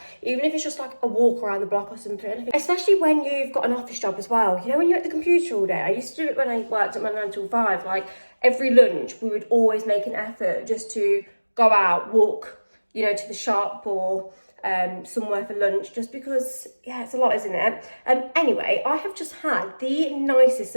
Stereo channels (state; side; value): inverted; both; correlation -1.00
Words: even if it's just like a walk around the block or something. Especially when you've got an office job as well. You know, when you're at the computer all day. I used to do it when I worked at my 9 till 5, like every lunch we would always make an effort just to go out, walk, you know, to the shop or somewhere for lunch, just because, yeah, it's a lot, isn't it? Anyway, I have just had the nicest